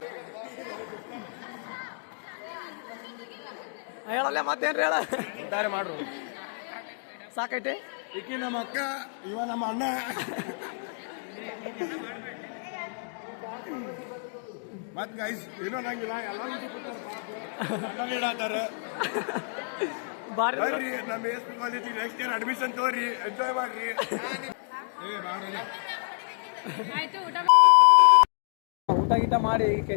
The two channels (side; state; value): right; silent; digital silence